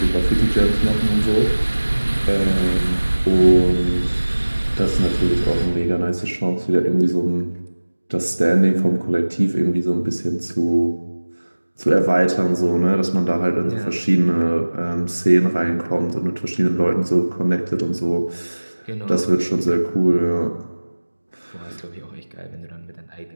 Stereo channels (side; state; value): both; inverted; correlation -1.00